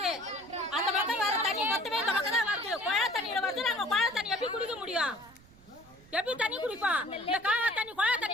அந்த பக்கம் வர தண்ணி மொத்தமே இந்த பக்கம் தான் வருது. குழாய் தண்ணியில வருது. நாங்க குழாய் தண்ணி எப்படி குடிக்க முடியும்? எப்படி தண்ணி குடிப்போம்? இந்த காவா தண்ணி குழாய்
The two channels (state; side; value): noise; right; rumble, 25 dB below the sound